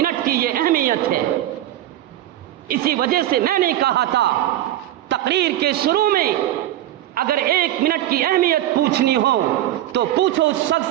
کی یہ اہمیت ہے۔ اسی وجہ سے میں نے کہا تھا تقریر کے شروع میں، اگر ایک منٹ کی اہمیت پوچھنی ہو تو پوچھو اس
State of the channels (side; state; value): left; quieter; 13.4 dB